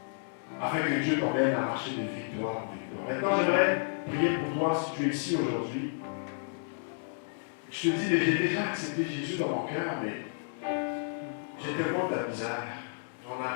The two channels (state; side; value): silent; right; digital silence